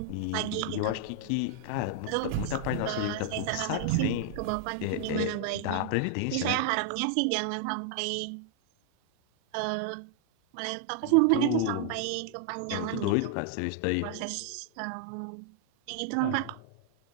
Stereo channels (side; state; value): both; different; correlation 0.00